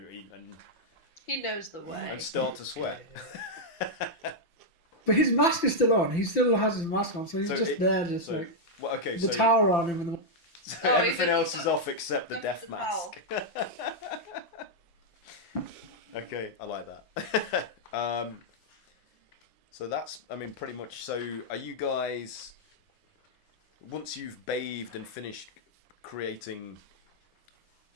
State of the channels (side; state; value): right; late; 5.9 ms